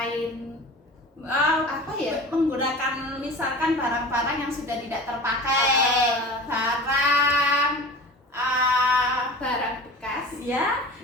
Menggunakan misalkan barang-barang yang sudah tidak terpakai, barang bekas ya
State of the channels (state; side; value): normal; both; correlation 0.36